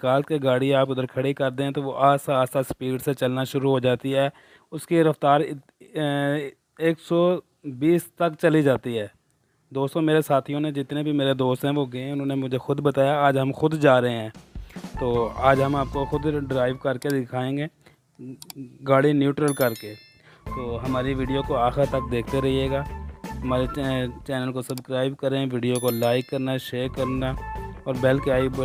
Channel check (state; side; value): identical; both; correlation 1.00